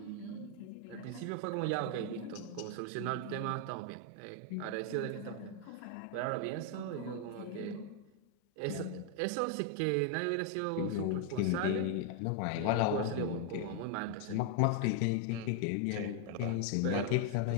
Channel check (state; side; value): different; both; correlation 0.00